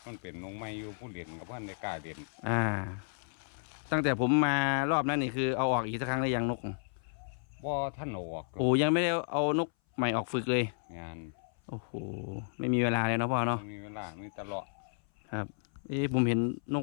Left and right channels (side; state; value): right; silent; 56 dB below the other